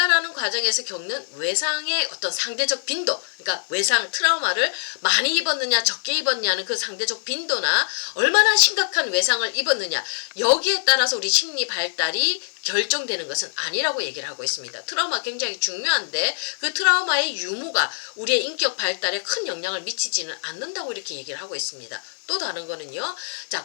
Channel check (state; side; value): silent; right; digital silence